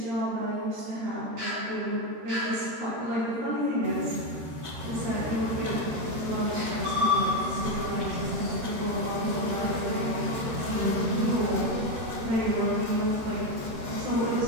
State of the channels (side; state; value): left; late; 13 ms